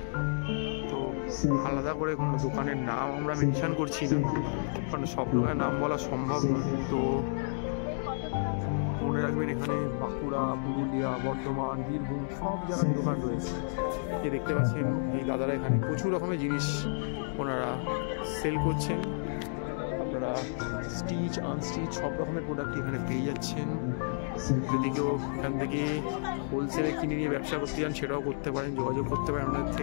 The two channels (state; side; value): silent; right; digital silence